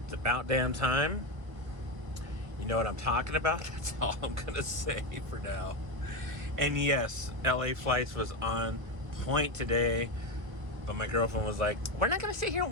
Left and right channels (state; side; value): late; left; 1.3 ms